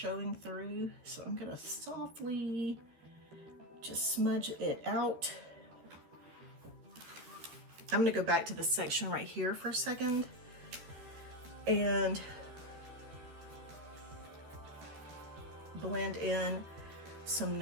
through. So I'm gonna softly just smudge it out. I'm gonna go back to this section right here for a second and blend in some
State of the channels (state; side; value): late; left; 13 ms